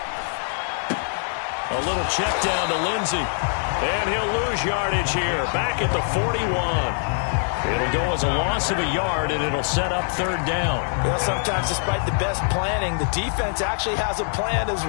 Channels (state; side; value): silent; right; 62 dB below the other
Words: A little check down to Lindsey. And he'll lose yardage here. Back at the 41. It'll go as a loss of a yard, and it'll set up 3rd down. Well, sometimes despite the best planning, the defense actually has a plan as